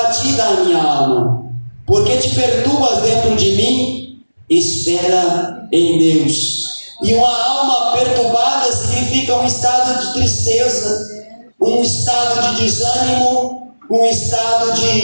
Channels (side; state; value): both; inverted; correlation -1.00